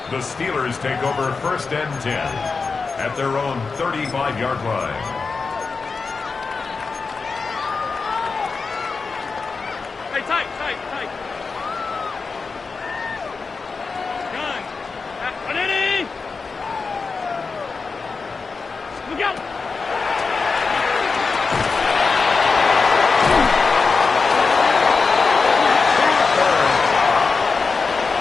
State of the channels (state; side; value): quieter; right; 4.6 dB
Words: The Steelers take over 1st and 10 at their own 35-yard line. Hey, tight. Gun. Ready? Look out.